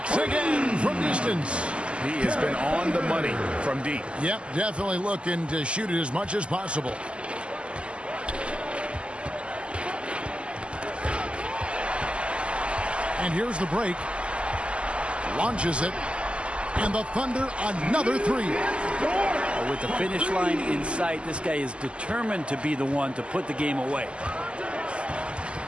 again from distance. He has been on the money from deep. Yep, definitely looking to shoot it as much as possible. And here's the break. Launches it. And the Thunder, another 3. With the finish line in sight, this guy is determined to be the one to put the game away.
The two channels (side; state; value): left; late; 0.054 ms